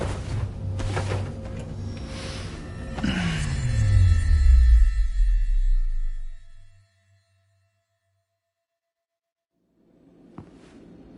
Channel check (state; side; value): identical; both; correlation 1.00